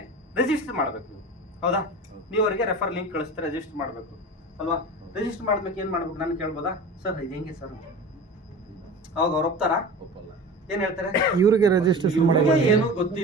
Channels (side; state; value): both; normal; correlation 0.34